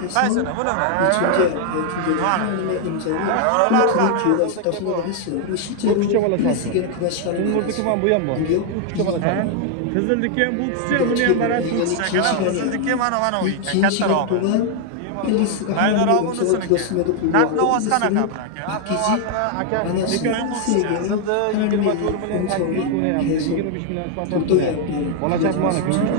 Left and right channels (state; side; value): different; both; correlation 0.00